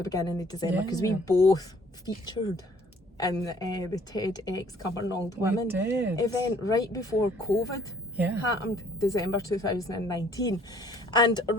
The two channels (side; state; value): both; normal; correlation 0.60